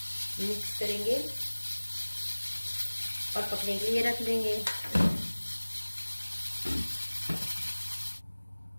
मिक्स करेंगे और पकने के लिए रख देंगे।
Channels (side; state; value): both; inverted; correlation -1.00